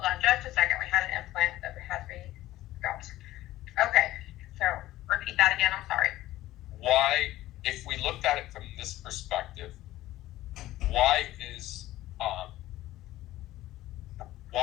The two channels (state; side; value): quieter; right; 15.6 dB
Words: on just a second. We had an implant that had to be got. Okay, so repeat that again. I'm sorry. Why, if we looked at it from this perspective, why is